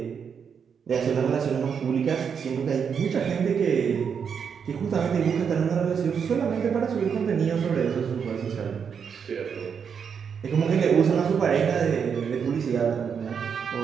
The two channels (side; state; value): left; quieter; 6.9 dB